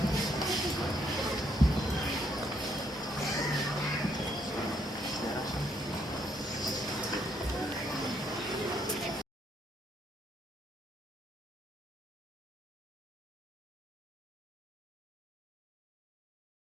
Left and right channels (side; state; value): both; normal; correlation 0.72